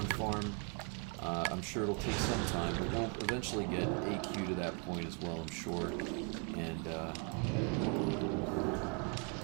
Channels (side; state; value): left; quieter; 36.8 dB